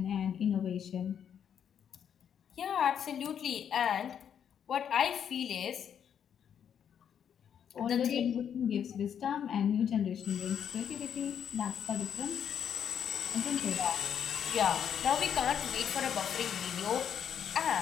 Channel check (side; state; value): right; quieter; 8.5 dB